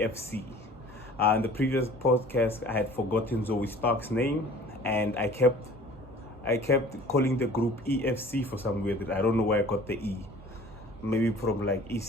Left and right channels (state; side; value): normal; both; correlation 0.48